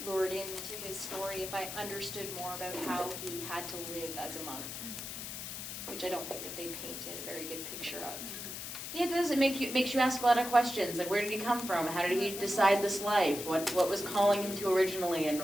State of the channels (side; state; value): left; noise; hiss, 7 dB below the sound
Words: lured into his story if I understood more about how he had to live as a monk, which I don't think that they painted a very good picture of. Yeah, it does. It makes you ask a lot of questions. Like, where did he come from? How did he decide this life? What was calling him to originally, and